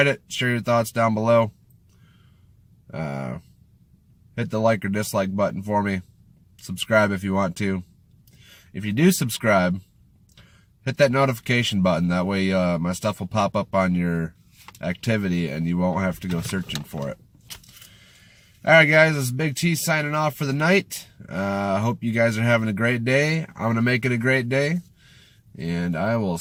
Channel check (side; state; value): both; identical; correlation 1.00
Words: it, share your thoughts down below. Hit the like or dislike button for me. Subscribe if you want to. If you do subscribe, hit that notification button. That way my stuff will pop up on your activity and you won't have to go searching for it. Alright guys, this is Big T signing off for the night. I hope you guys are having a great day. I'm going to make it a great day. And I will